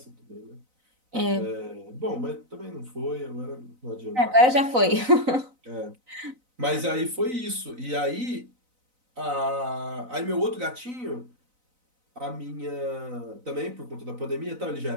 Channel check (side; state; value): left; late; 4.0 ms